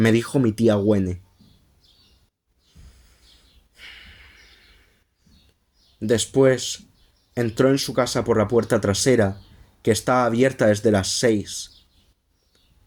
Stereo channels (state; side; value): identical; both; correlation 1.00